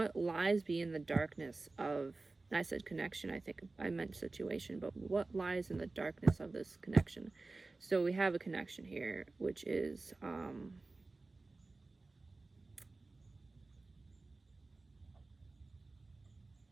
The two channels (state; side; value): quieter; left; 3.4 dB